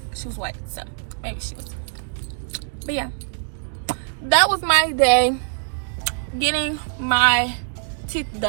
she was white, so maybe she was. But yeah, that was my day, getting my teeth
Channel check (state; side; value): silent; left; digital silence